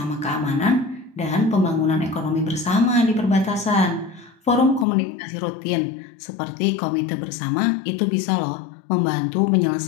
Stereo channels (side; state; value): right; drops out; at 4.9 s